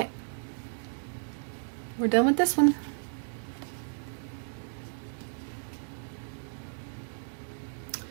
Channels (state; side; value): silent; left; digital silence